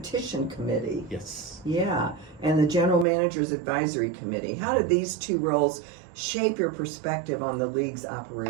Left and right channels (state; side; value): drops out; left; at 3.1 s